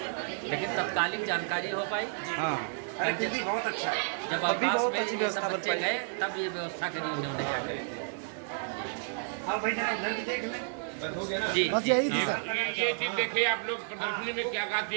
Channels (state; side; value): silent; left; digital silence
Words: लेकिन तत्कालिक जानकारी हो पाई। अरे दीदी बहुत अच्छा है। जब अवकाश में ये सब बच्चे गए तब ये व्यवस्था करी उन्होंने जाकर। हाँ भाई जरा उधर भी देख लें। बस हो गया ना? जी ये चीज देखिए आप लोग प्रदर्शनी में क्या क्या